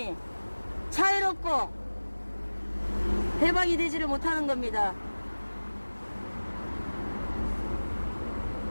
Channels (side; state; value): both; inverted; correlation -1.00